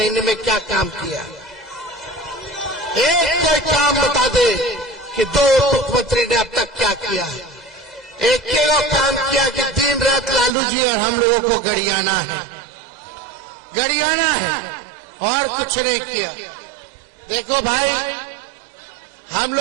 में क्या काम किया। एक काम बता दे कि 2 मुख्यमंत्री ने अब तक क्या किया है। एक काम किया कि दिन रात लालू जी और हम लोगों को गरियाना है, गरियाना है, और कुछ नहीं किया। देखो भाई, हम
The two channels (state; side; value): drops out; left; at 10.5 s